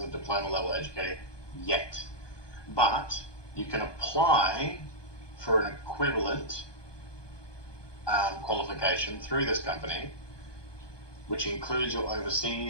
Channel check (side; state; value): right; late; 1.2 ms